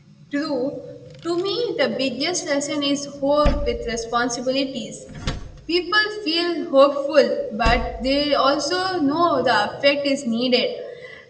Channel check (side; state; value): both; identical; correlation 1.00